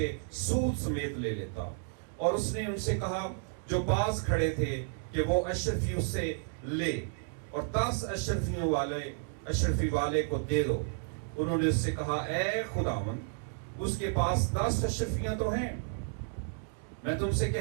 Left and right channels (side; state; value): left; silent; digital silence